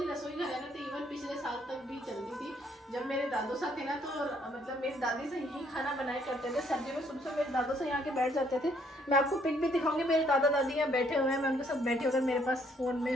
रसोई घर है ना, तो इवन पिछले साल तक भी चलती थी। जब मेरे दादू साहब थे ना, तो मतलब मेरी दादी से यही खाना बनाया करते थे। सर्दी में सुबह मेरे दादू से यहाँ के बैठ जाते थे। मैं आपको पिक भी दिखाऊंगी, मेरे दादा दादी यहाँ बैठे हुए हैं, मैं उनके साथ बैठे होकर मेरे पास फ़ोन में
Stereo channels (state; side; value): normal; both; correlation 0.67